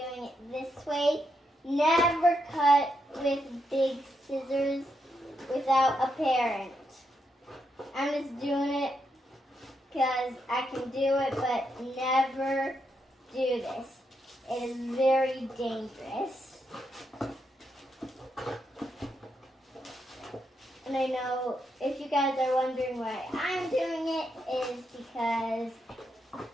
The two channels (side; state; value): both; normal; correlation 0.81